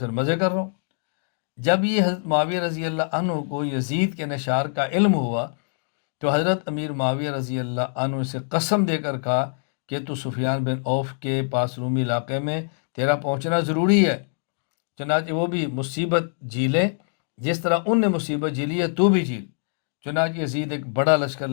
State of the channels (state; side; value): silent; right; digital silence